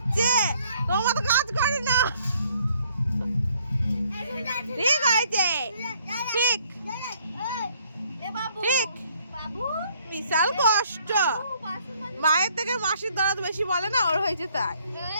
তোমার তো কাজ করে না। ঠিক হয়েছে, ঠিক ঠিক। বিশাল কষ্ট, মায়ের থেকে মাসির দরদ বেশি বলে না, ওর হয়েছে তাই।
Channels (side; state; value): both; inverted; correlation -0.64